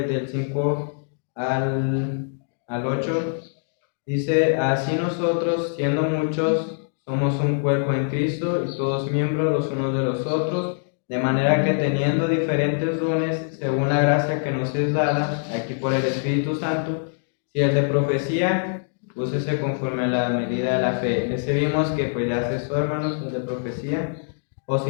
del 5 al 8, dice: así nosotros, siendo muchos, somos un cuerpo en Cristo y todos miembros los unos de los otros, de manera que teniendo diferentes dones según la gracia que nos es dada, aquí por el Espíritu Santo, si el de profecía, úsese conforme a la medida de la fe. Ese vimos que pues ya cesó, hermanos, el de profecía. O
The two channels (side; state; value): right; silent; digital silence